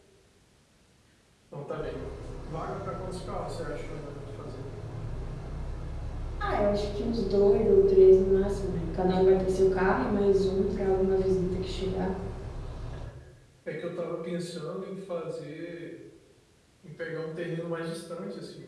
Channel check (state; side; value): identical; both; correlation 1.00